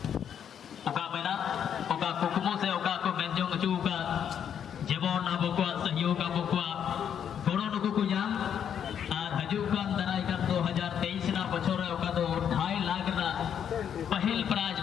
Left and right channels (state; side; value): quieter; right; 8.6 dB